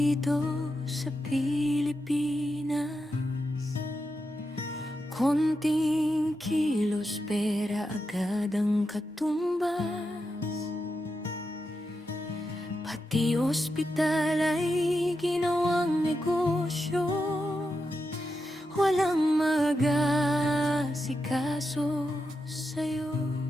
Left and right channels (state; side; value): normal; both; correlation 0.87